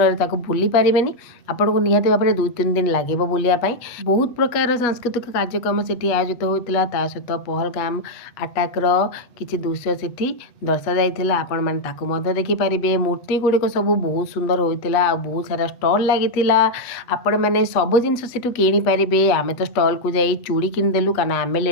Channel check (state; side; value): late; right; 8.2 ms